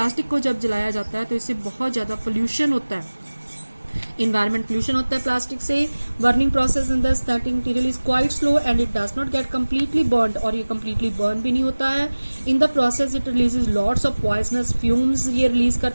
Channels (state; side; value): inverted; both; correlation -1.00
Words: को जब जलाया जाता है तो इससे बहुत ज्यादा पोल्यूशन होता है. इन्वायरमेंट पोल्यूशन होता है प्लास्टिक से. Burning process in the starting material is quite slow and it does not get completely burn. और ये कम्प्लीटली बर्न भी नहीं होता है. In the process it releases lots of poisonous fumes ये रिलीज